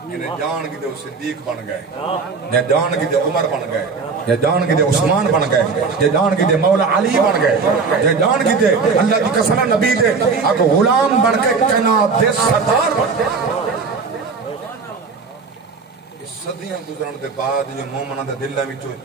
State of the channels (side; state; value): left; quieter; 4.8 dB